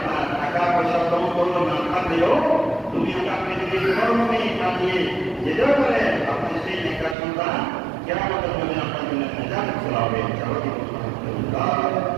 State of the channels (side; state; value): left; drops out; at 7.2 s